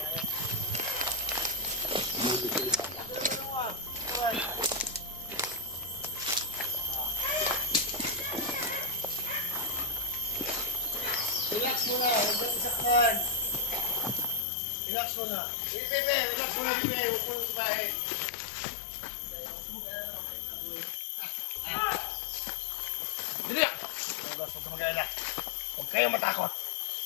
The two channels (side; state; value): right; drops out; at 14.5 s